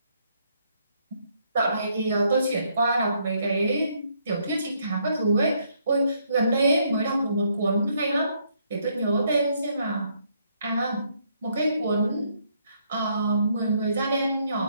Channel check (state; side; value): inverted; both; correlation -0.72